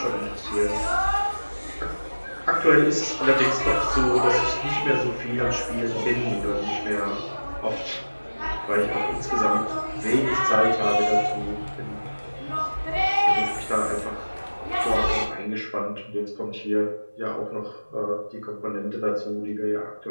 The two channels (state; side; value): inverted; both; correlation -1.00